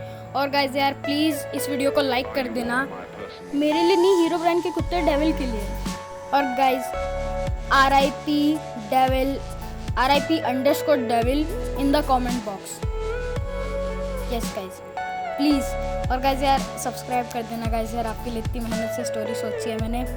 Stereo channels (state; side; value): identical; both; correlation 1.00